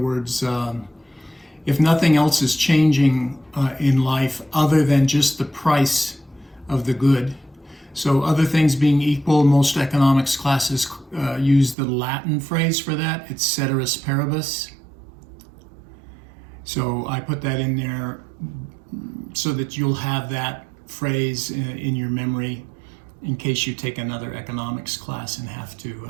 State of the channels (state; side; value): drops out; left; at 11.8 s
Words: if nothing else is changing in life other than just the price of the good, so other things being equal, most economics classes use the Latin phrase for that. It's ceteris paribus. So I put that in there so that you'll have that phrase in your memory in case you take another economics class and have to